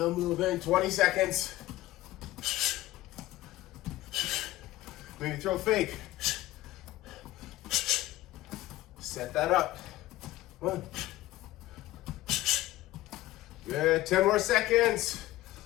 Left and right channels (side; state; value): right; quieter; 16.5 dB